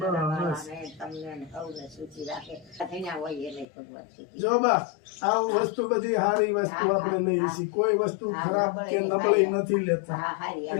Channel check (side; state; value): right; drops out; at 3.7 s